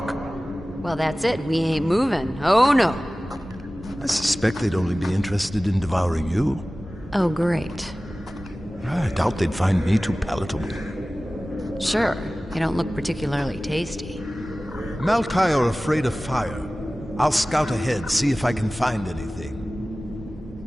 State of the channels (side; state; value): both; normal; correlation 0.97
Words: Well, that's it. We ain't moving. Oh, no. I suspect they'd only be interested in devouring you. Oh, great. I doubt they'd find me too palatable. Sure. You don't look particularly tasty. Malkai are afraid of fire. I'll scout ahead, see if I can find anything.